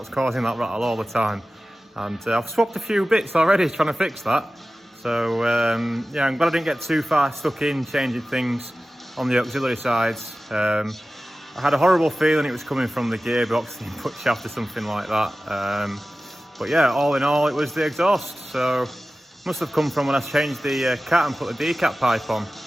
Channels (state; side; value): normal; both; correlation 0.96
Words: causing that rattle all the time. And I've swapped a few bits already trying to fix that. So yeah, I'm glad I didn't get too far stuck in changing things on the auxiliary sides. I had a horrible feeling it was coming from the gearbox, the input shaft or something like that. But yeah, all in all, it was the exhaust. So must have come from when I changed the cat and put the decap pipe on.